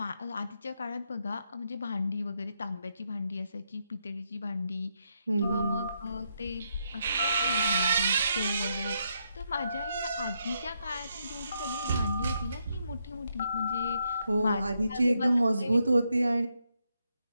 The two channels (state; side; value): inverted; both; correlation -0.80